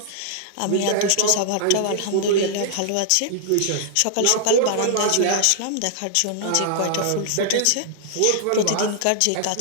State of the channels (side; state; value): both; different; correlation -0.01